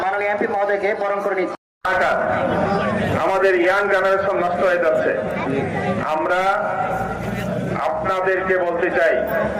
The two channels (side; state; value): both; identical; correlation 1.00